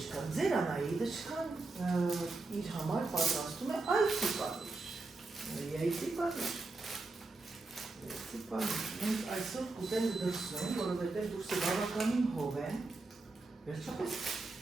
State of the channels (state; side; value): quieter; left; 3.4 dB